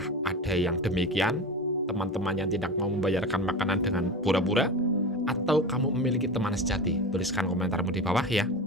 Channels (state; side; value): normal; both; correlation 0.27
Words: ada yang demikian, teman-teman yang tidak mau membayarkan makanan dengan pura-pura? Atau kamu memiliki teman sejati? Tuliskan komentarmu di bawah ya.